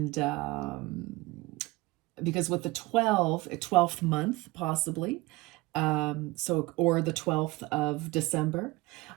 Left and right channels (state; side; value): quieter; left; 21.6 dB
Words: because with the 12th month, possibly, or the 12th of December.